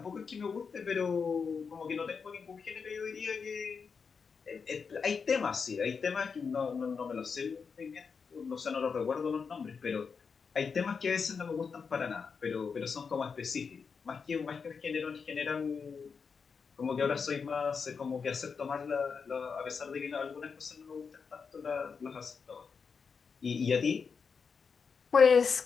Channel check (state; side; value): quieter; right; 5.6 dB